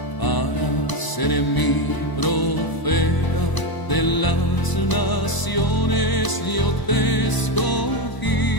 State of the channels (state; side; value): late; right; 1.0 ms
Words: para ser mi profeta de las naciones. Yo te escogí.